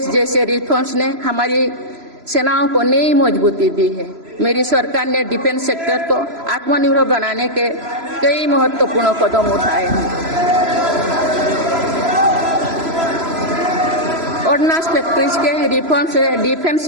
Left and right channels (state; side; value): late; left; 3.0 ms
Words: जैसे रिफॉर्म्स ने हमारी सेनाओं को नई मजबूती दी है। मेरी सरकार ने डिफेंस सेक्टर को आत्मनिर्भर बनाने के कई महत्वपूर्ण कदम उठाए हैं। ऑर्डिनेंस फैक्ट्रीज के रिफॉर्म से डिफेंस